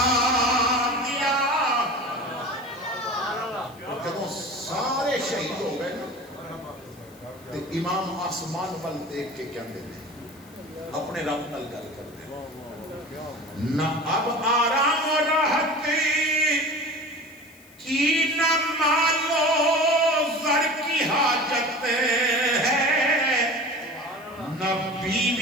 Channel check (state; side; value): noise; left; hiss, 26 dB below the sound